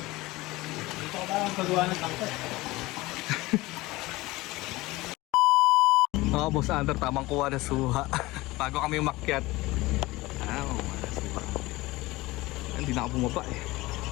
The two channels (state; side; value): quieter; right; 20.2 dB